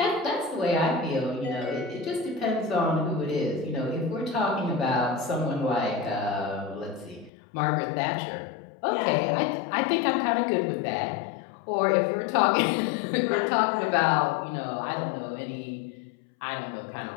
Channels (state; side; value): drops out; right; at 7.3 s